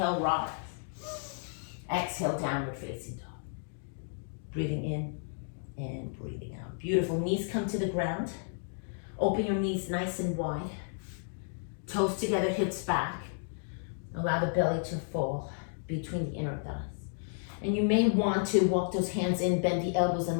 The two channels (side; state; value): right; silent; digital silence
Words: rise. Exhale, downward facing dog. Breathing in and breathing out. Beautiful. Knees come to the ground. Open your knees nice and wide. Toes together, hips back. Allow the belly to fall between the inner thighs. And you may want to walk those hands in, bend the elbows,